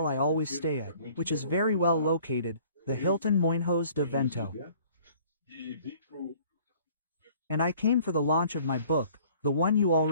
I always stay at, which is very well located, the Hilton Moinhos de Vento. And I came for the launch of my book, the one you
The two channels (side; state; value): both; inverted; correlation -0.54